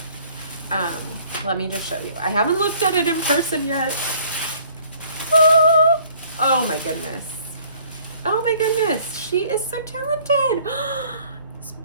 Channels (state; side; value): inverted; both; correlation -0.57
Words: Let me just show you. I haven't looked at it in person yet. Oh my goodness. Oh my goodness. She is so talented. It's